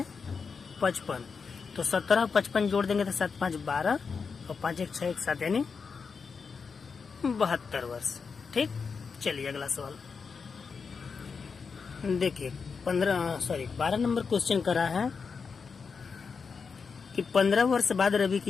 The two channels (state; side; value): quieter; right; 5.4 dB